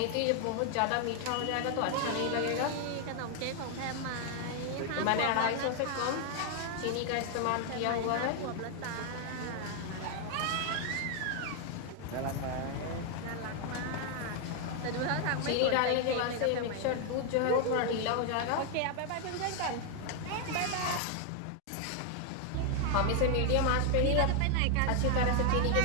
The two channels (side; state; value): both; different; correlation 0.00